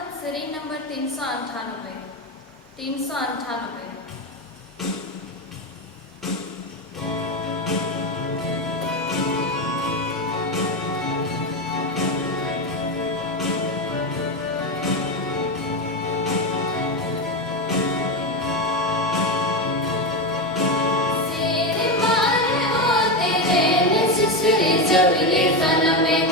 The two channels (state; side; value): normal; both; correlation 0.13